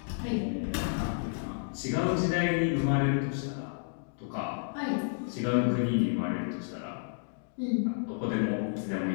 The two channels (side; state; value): right; silent; digital silence